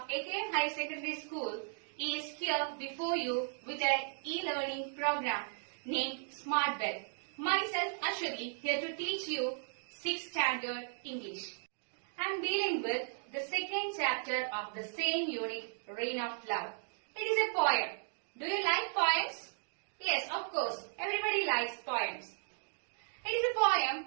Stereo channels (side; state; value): left; silent; digital silence